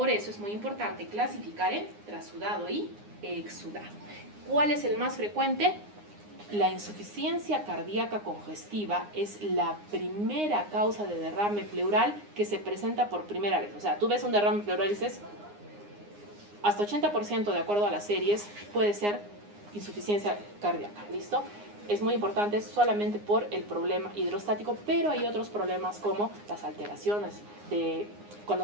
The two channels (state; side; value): late; left; 9.7 ms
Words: eso es muy importante clasificar en trasudado y exudado. ¿Cuál es el más frecuente? La insuficiencia cardíaca congestiva es la primera causa de derrame pleural que se presenta por primera vez. O sea, tú ves un derrame pleural y dices, hasta 80% de acuerdo a las series puede ser insuficiencia cardíaca, ¿listo? Es muy importante solamente por el problema hidrostático, pero hay otros problemas como las alteraciones de cuando